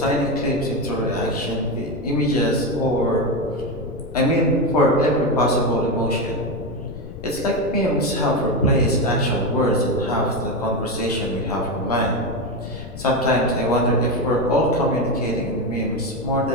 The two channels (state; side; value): noise; left; rumble, 12 dB below the sound